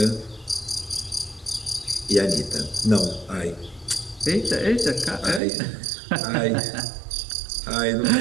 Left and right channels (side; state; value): left; drops out; at 5.4 s